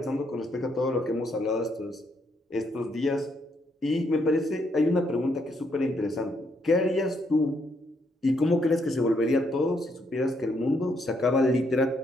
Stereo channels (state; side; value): normal; both; correlation 0.75